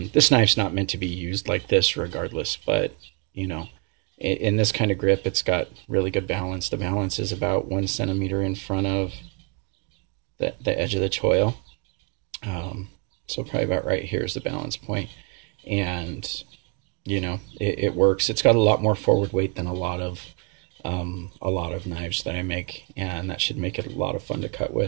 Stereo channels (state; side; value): quieter; left; 33.9 dB